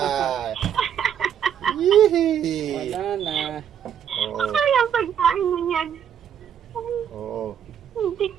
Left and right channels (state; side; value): quieter; left; 8.9 dB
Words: Yee! Wala na. Oo. Ay, ang pagkain mo yan. Oo.